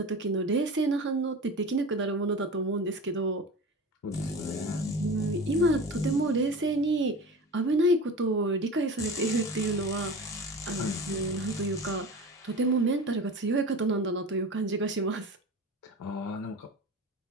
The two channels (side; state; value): both; normal; correlation 0.33